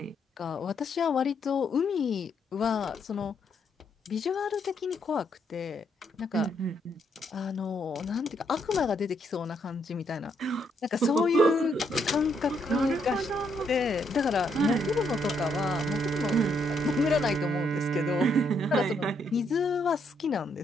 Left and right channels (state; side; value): normal; both; correlation 0.74